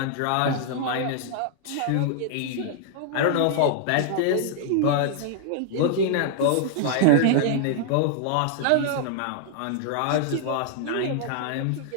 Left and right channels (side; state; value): both; different; correlation -0.01